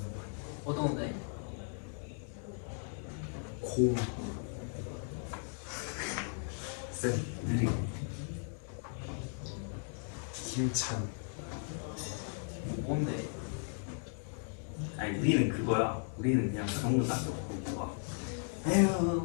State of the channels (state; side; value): silent; right; 53 dB below the other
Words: 어떤 건데? 공. 쌤. 느리고. 힘찬. 뭔데? 아니 우리는 그거야. 우리는 그냥 그런 거 딱 넣고 막 에휴